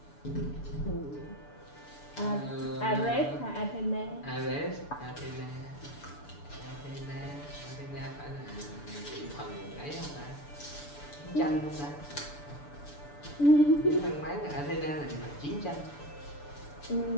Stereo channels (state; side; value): late; right; 6.9 ms